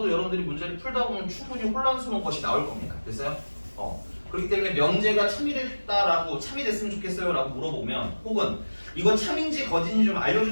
여러분들이 문제를 풀다 보면 충분히 혼란스러운 것이 나올 겁니다. 됐어요? 그렇기 때문에 명제가 참이 됐다라고 참이 됐으면 좋겠어요 라고 물어보면 혹은 이거 참인지 거짓인지 좀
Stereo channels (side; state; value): both; inverted; correlation -1.00